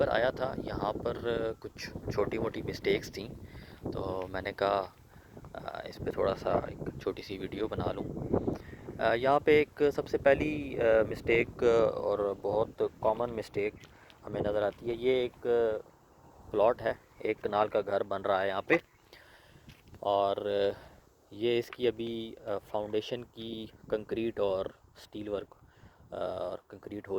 आया था, यहाँ पर कुछ छोटी मोटी मिस्टेक्स थी, तो मैंने कहा इस पे थोड़ा सा एक छोटी सी वीडियो बना लूँ। यहाँ पे एक सबसे पहली मिस्टेक और बहुत कॉमन मिस्टेक हमें नज़र आती है। ये एक प्लॉट है, एक कनाल का घर बन रहा है यहाँ पे, और ये इसकी अभी फाउंडेशन की कंक्रीट और स्टील वर्क और कंक्रीट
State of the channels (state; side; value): identical; both; correlation 1.00